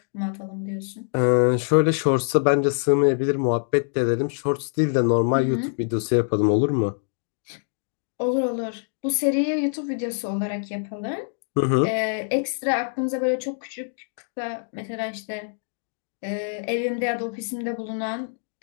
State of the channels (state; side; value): silent; right; digital silence